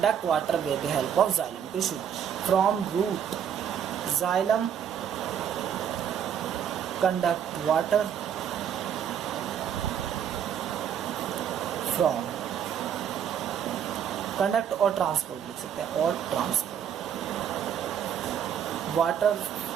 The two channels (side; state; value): left; quieter; 8.7 dB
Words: water with the help of xylem tissue from root. Xylem conduct water from, conduct और ट्रांसपोर्ट लिख सकते हैं, और transport water